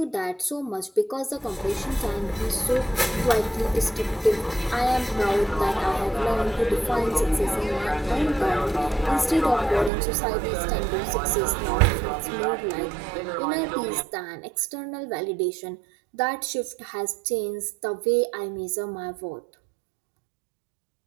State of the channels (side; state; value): left; drops out; at 9.9 s